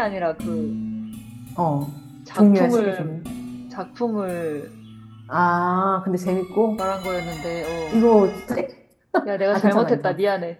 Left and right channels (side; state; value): both; identical; correlation 1.00